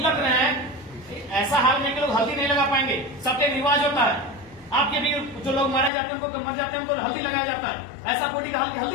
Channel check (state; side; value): drops out; right; at 5.9 s